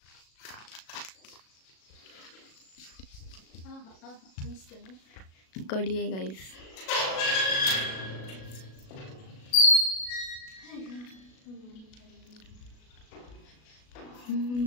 कडी आहे guys.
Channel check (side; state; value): right; late; 37 ms